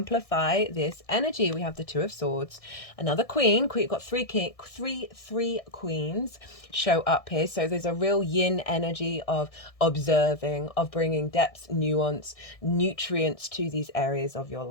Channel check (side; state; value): right; late; 1.6 ms